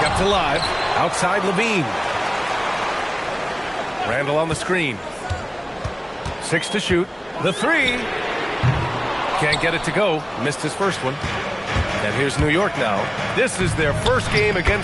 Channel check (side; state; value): both; identical; correlation 1.00